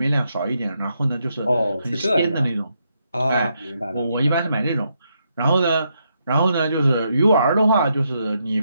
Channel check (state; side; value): inverted; both; correlation -0.79